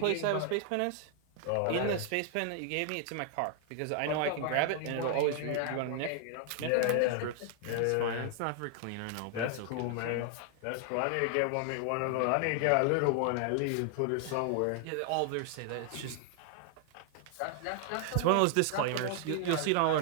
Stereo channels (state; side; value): different; both; correlation 0.00